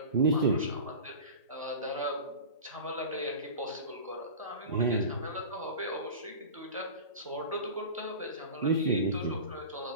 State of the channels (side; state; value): both; inverted; correlation -0.33